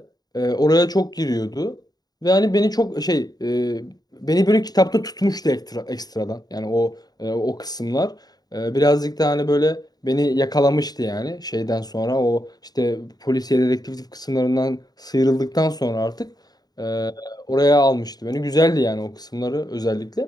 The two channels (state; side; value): late; right; 0.19 ms